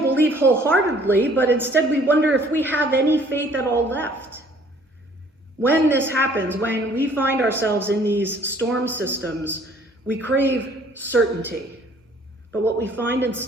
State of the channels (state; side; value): normal; both; correlation 0.57